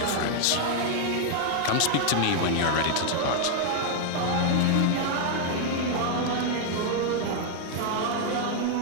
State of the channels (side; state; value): both; different; correlation 0.00